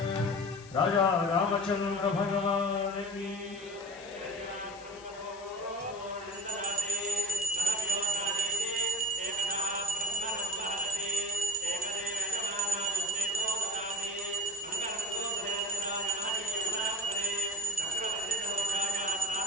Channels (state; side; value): noise; left; hiss, 21 dB below the sound